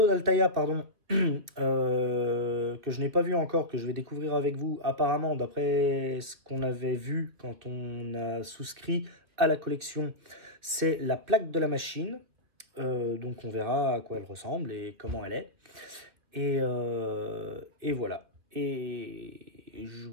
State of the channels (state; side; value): late; left; 2.6 ms